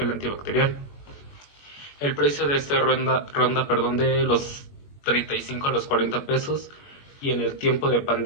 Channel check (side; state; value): right; late; 21 ms